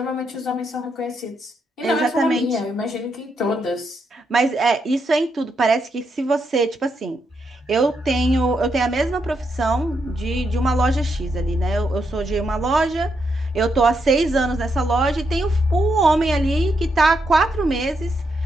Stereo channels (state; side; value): normal; both; correlation 0.80